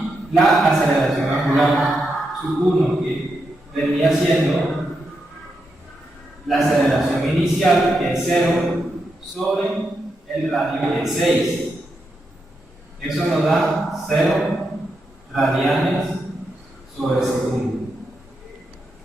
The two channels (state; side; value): normal; both; correlation 0.84